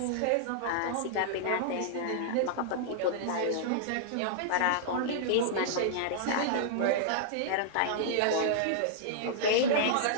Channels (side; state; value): both; different; correlation -0.01